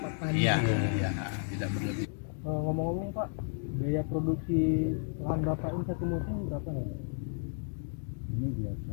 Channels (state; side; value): silent; right; 56 dB below the other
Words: tadi. Iya, iya, tidak berlebih. Ngomong-ngomong Pak, biaya produksi lahan Bapak ini satu musim berapa nih Pak? Ini